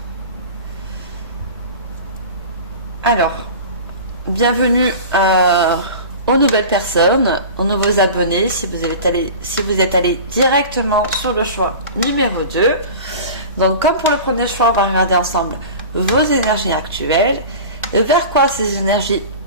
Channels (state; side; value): inverted; both; correlation -0.35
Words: Alors, bienvenue aux nouvelles personnes, aux nouveaux abonnés, si vous êtes allé directement sur le choix numéro 2. Donc, comme pour le premier choix, on va regarder ensemble vos énergies actuelles, vers quoi ces énergies